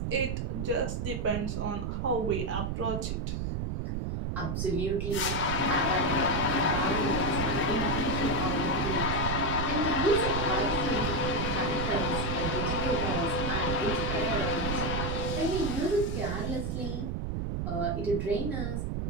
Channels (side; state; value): right; noise; rumble, 1 dB below the sound